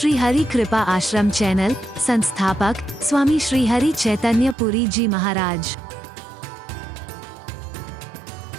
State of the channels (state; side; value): drops out; left; at 4.5 s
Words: हरि कृपा आश्रम चैनल। संस्थापक स्वामी श्री हरि चैतन्य पुरी जी महाराज।